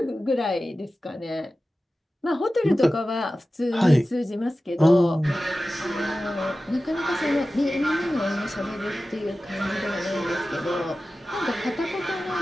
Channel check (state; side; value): normal; both; correlation 0.95